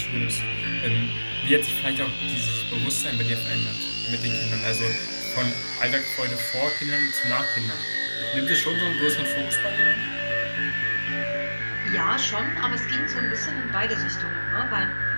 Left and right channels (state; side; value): inverted; both; correlation -1.00